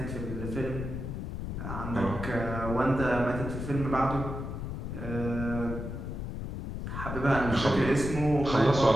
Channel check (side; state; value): left; noise; rumble, 6 dB below the sound